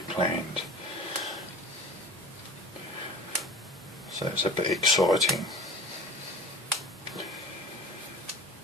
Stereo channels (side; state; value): both; normal; correlation 0.38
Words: planned. So it's a bit exciting.